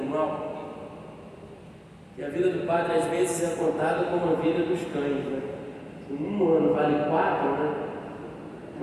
mal, que a vida do padre às vezes é contada como a vida dos cães, né? Um ano vale 4, né?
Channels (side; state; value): both; identical; correlation 1.00